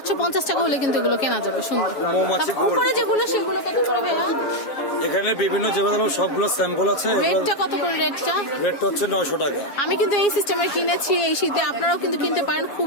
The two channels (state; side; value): late; right; 7.3 ms